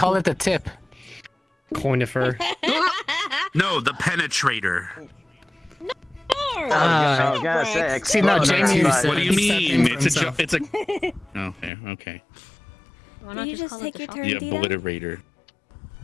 it the tip. Coinifer. No, the penetrator. I was gonna say, See, no, Jamie. What do you mean? It's a. Okay, okay. Why Did not you just call it take the your shocker? turn, The Dita? obliterator.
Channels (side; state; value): right; drops out; at 11.7 s